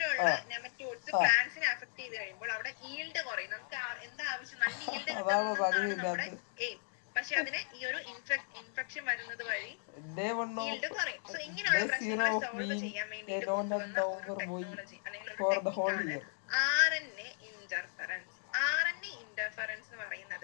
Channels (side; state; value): right; silent; 54 dB below the other